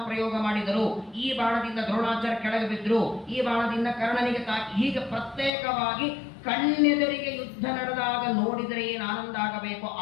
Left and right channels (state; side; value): drops out; right; at 5.5 s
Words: ಪ್ರಯೋಗ ಮಾಡಿದರು, ಈ ಬಾಣದಿಂದ ದ್ರೋಣಾಚಾರ್ಯ ಕೆಳಗೆ ಬಿದ್ರು, ಈ ಬಾಣದಿಂದ ಕರ್ಣನಿಗೆ ತಾಕಿ, ಹೀಗೆ ಪ್ರತ್ಯೇಕವಾಗಿ ಕಣ್ಣೆದರಿಗೆ ಯುದ್ಧ ನಡೆದಾಗ ನೋಡಿದರೆ ಏನು ಆನಂದ ಆಗಬೇಕು